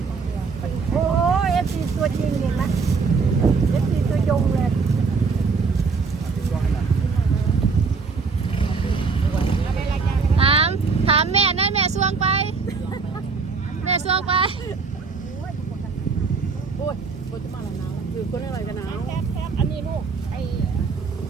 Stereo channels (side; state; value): left; quieter; 4.8 dB